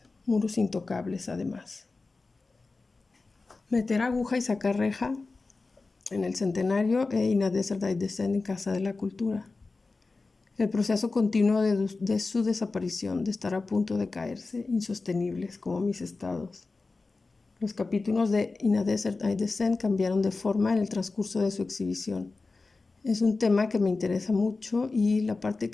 muros intocables además. Meter aguja y sacar reja en el centenario e In a Desert I Descend en Casa de la Cultura. El proceso continuo de su desaparición, de estar a punto de caerse, insostenibles como mis estados. Los capítulos de In a Desert I Descend cambiaron de forma en el transcurso de su exhibición. Es un tema que me interesa mucho y la parte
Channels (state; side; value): quieter; right; 3.7 dB